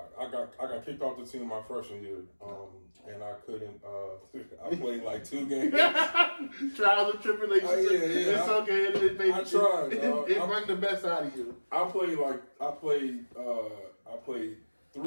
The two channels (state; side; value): inverted; both; correlation -1.00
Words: I got kicked off the team my freshman year, and I couldn't. I played like 2 games. Trials and tribulations. It's okay. I tried. It brought the best out of you. I played